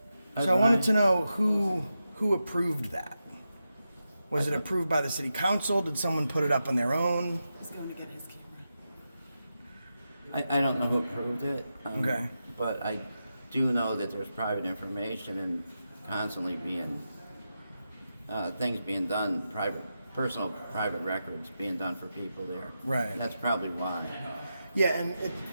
I've So I wanted to been- know who approved that. Was it approved by the city council? Did someone put it up on their own? He's going to get his camera. I don't know who approved it. Okay. But I do know that there's private information and constantly being, things being done, personal private records being done for people there. Right. That's probably why. Yeah, and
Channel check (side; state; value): both; inverted; correlation -0.89